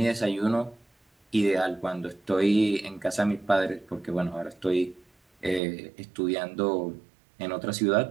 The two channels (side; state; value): left; drops out; at 5.6 s